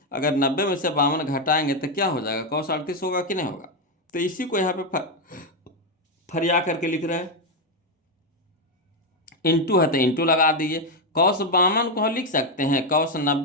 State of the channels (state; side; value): normal; both; correlation 0.05